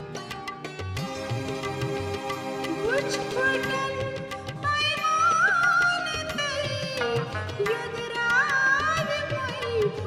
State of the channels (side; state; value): both; identical; correlation 1.00